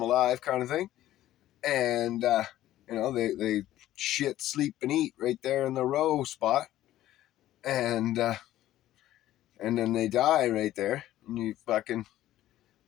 alive, kind of thing, and they shit, sleep, and eat right there in the row spot, and then they die right there, and you fucking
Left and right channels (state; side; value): quieter; right; 13.8 dB